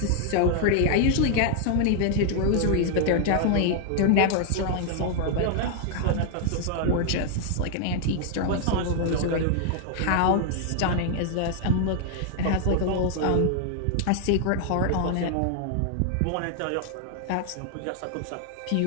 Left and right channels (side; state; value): both; different; correlation 0.00